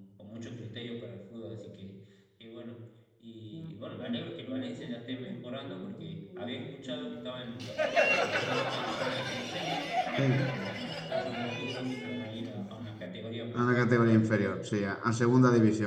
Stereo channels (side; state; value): both; identical; correlation 1.00